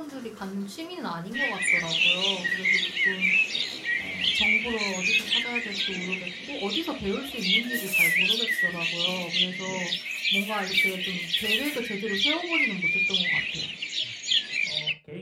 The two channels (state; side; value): identical; both; correlation 1.00